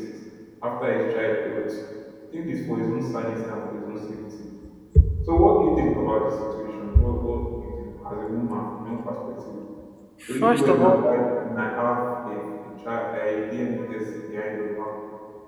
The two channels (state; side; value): identical; both; correlation 1.00